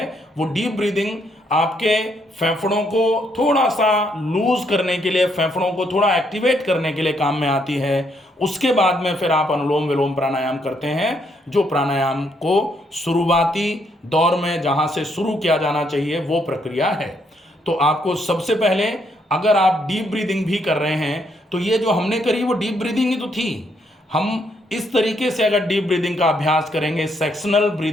वो डीप ब्रीदिंग आपके फेफड़ों को थोड़ा सा लूज करने के लिए, फेफड़ों को थोड़ा एक्टिवेट करने के लिए काम में आती है। उसके बाद में फिर आप अनुलोम विलोम प्राणायाम करते हैं, जो प्राणायाम को शुरुआती दौर में जहां से शुरू किया जाना चाहिए वो प्रक्रिया है। तो आपको सबसे पहले अगर आप डीप ब्रीदिंग भी कर रहे हैं तो ये जो हमने करी वो डीप ब्रीदिंग ही तो थी। हम इस तरीके से अगर डीप ब्रीदिंग का अभ्यास करेंगे सेक्शनल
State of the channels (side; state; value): both; normal; correlation 0.73